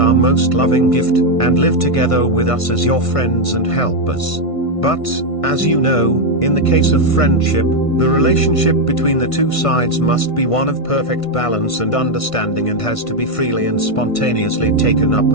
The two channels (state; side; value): late; right; 1.5 ms